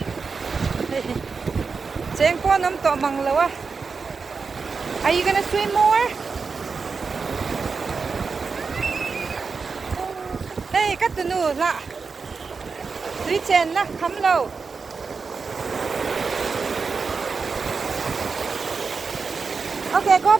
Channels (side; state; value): left; quieter; 4.9 dB